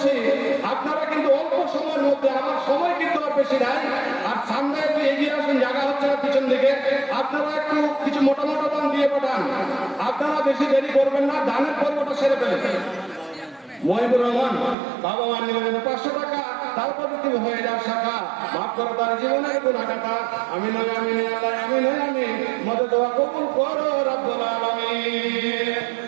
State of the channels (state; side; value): drops out; left; at 14.8 s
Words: আপনারা কিন্তু অল্প সময়ের মধ্যে, আমার সময় কিন্তু আর বেশি নাই, আর সামনে একটু এগিয়ে আসুন, জায়গা হচ্ছে না পিছন দিকে, আপনারা একটু কিছু মোটা মোটা দান দিয়ে পাঠান। আপনারা বেশি দেরি করবেন না, দানের পর্বটা সেরে ফেলেন। মহিবুর রহমান বাবা মা নিলেন 500 টাকা, তারপর তুমি হয়ে যাও শাখা, মাফ করো তার জীবনের গুনাহগাতা। আমি নয় আমি নয় আল্লাহ আমি নয় আমি, মদদ দোয়া কবুল করো রব্বুল আলামিন।